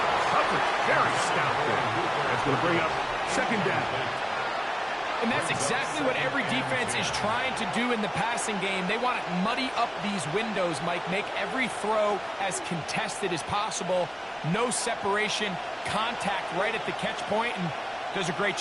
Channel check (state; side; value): identical; both; correlation 1.00